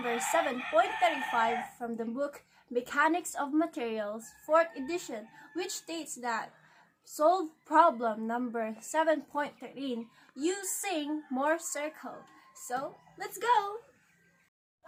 7.35 from the book Mechanics of Materials, 4th edition, which states that solve problem number 7.13 using mohr circle. So, let's go!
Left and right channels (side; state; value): both; identical; correlation 1.00